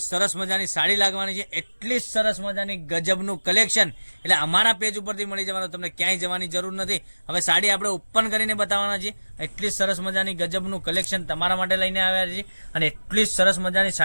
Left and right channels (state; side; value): inverted; both; correlation -1.00